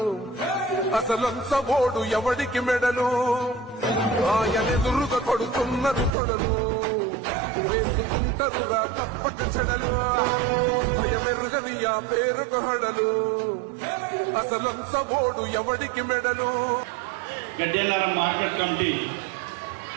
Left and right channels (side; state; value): left; drops out; at 6.2 s